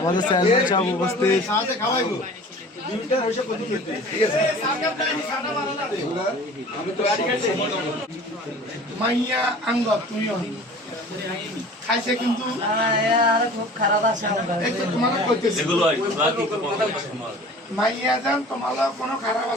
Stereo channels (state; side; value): normal; both; correlation 0.43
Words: চেয়ারম্যান সাহেব উপস্থিত। মাইয়া আঙ্গ তুমিও খাইছে কিন্তু খুব খারাপ আছে মাইয়া যান তোমার কোনো খারাপ